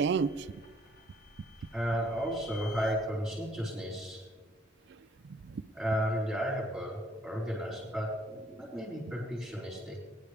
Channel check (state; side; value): normal; both; correlation 0.63